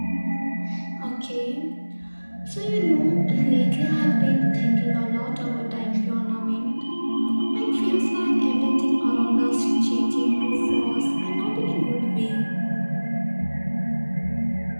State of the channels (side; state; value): both; inverted; correlation -1.00